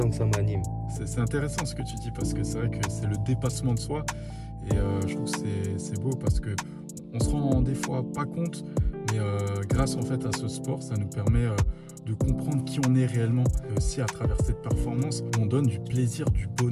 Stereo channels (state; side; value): identical; both; correlation 1.00